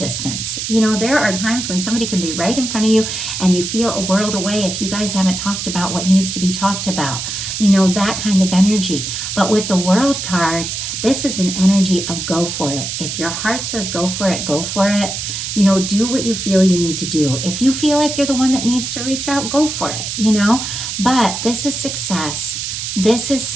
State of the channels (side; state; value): right; noise; hiss, 5 dB below the sound